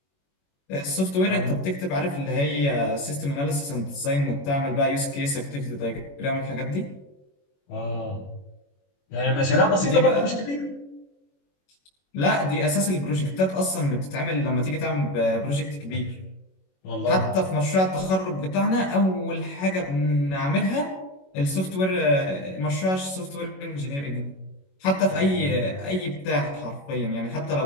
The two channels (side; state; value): right; late; 21 ms